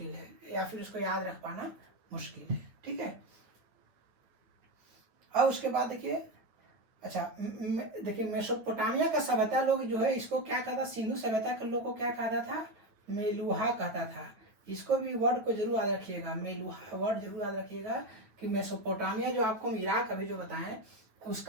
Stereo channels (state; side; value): late; left; 9.2 ms